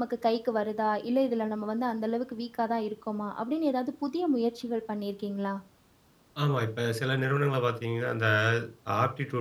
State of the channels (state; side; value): identical; both; correlation 1.00